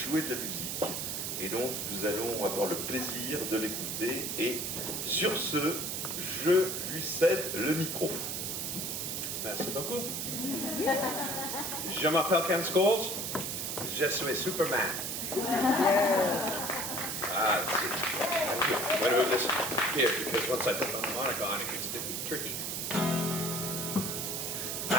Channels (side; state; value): right; noise; hiss, 2 dB below the sound